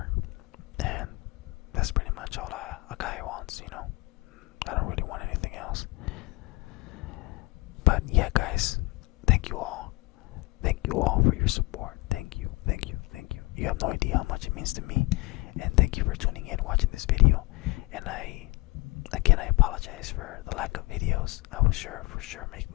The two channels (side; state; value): right; quieter; 24.2 dB